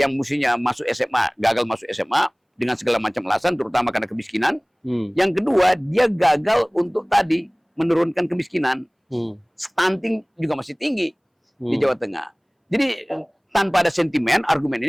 mestinya masuk SMA, gagal masuk SMA dengan segala macam alasan, terutama karena kemiskinan. Yang kedua, dia gagal untuk tadi menurunkan kemiskinan. Stunting juga masih tinggi di Jawa Tengah. Jadi tanpa ada sentimen, argumen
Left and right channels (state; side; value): identical; both; correlation 1.00